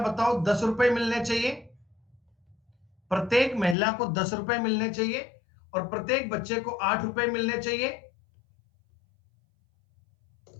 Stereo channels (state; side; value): drops out; right; at 3.8 s